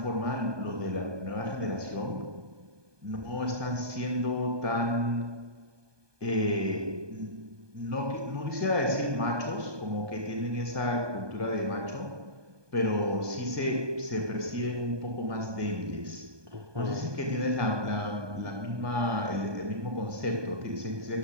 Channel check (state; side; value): late; left; 1.2 ms